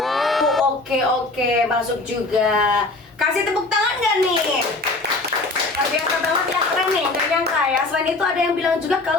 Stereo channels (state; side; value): quieter; right; 3.2 dB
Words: Oke, masuk juga. Kasih tepuk tangan nggak nih? Luar biasa banget ya, keren nih, gak nyangka ya. Selain itu ada yang bilang juga